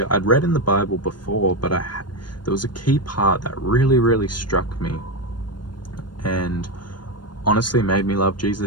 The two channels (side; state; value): right; late; 0.71 ms